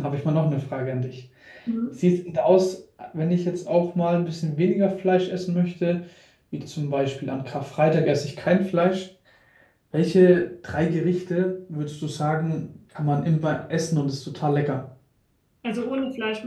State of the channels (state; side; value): identical; both; correlation 1.00